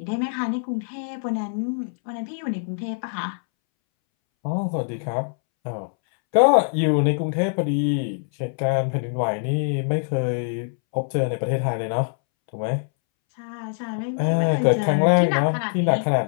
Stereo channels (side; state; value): right; silent; 63 dB below the other